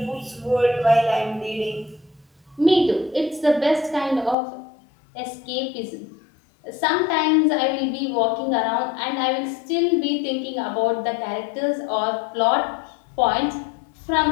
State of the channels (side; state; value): right; drops out; at 4.4 s